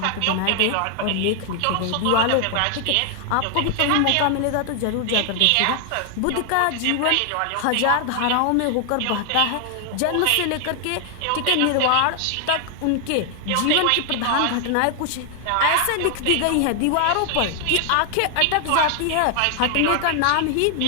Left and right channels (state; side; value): different; both; correlation 0.00